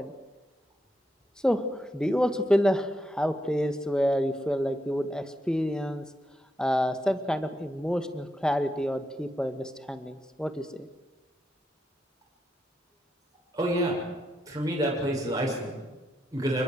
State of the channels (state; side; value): normal; both; correlation 0.82